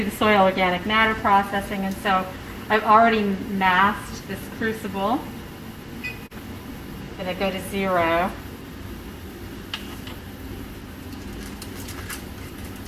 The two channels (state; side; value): identical; both; correlation 1.00